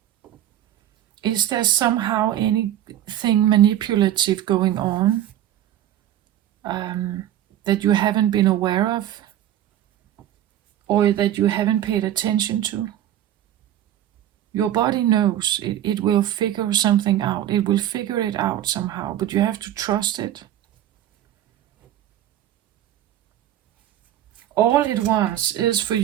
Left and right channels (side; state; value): left; quieter; 11.9 dB